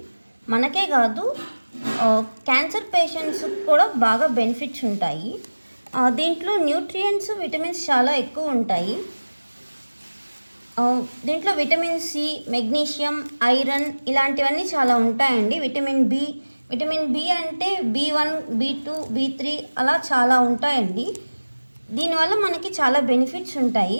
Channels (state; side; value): inverted; both; correlation -1.00